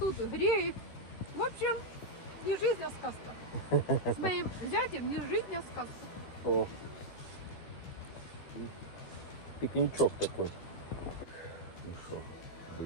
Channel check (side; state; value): right; late; 13 ms